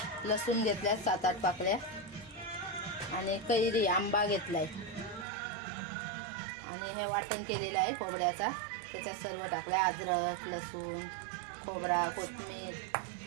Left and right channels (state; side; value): drops out; left; at 5.2 s